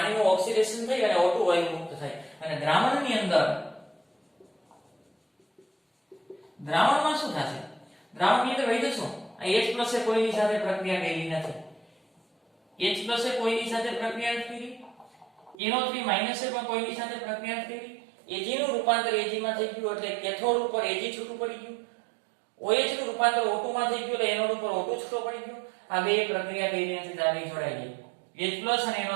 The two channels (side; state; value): left; drops out; at 15.6 s